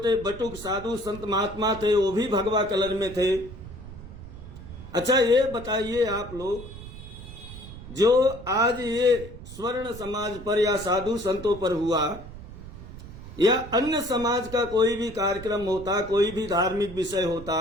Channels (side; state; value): right; noise; rumble, 14 dB below the sound